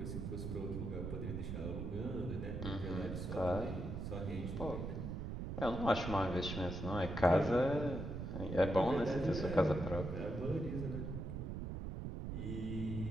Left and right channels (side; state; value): right; noise; rumble, 5 dB below the sound